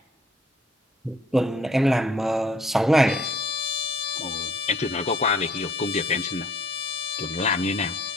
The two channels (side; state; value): both; normal; correlation 0.60